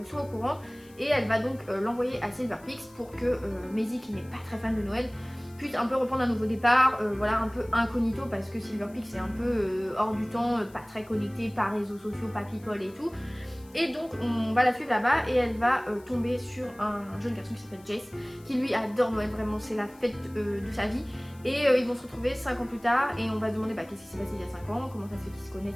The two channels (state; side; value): noise; left; hiss, 26 dB below the sound